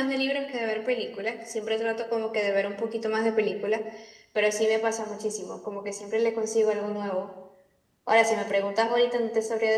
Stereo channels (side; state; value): both; identical; correlation 1.00